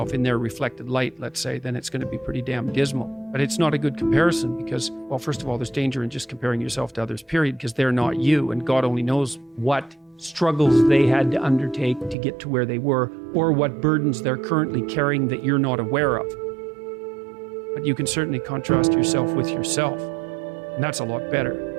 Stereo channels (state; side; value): drops out; left; at 12.2 s